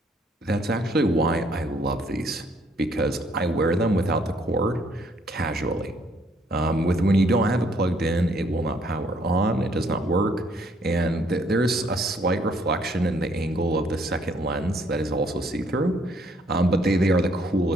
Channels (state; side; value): normal; both; correlation 0.66